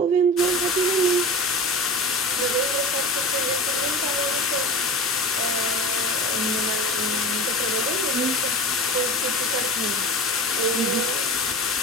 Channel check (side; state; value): both; normal; correlation 0.32